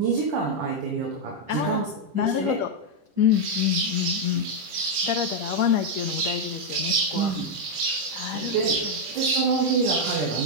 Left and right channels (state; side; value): late; left; 10 ms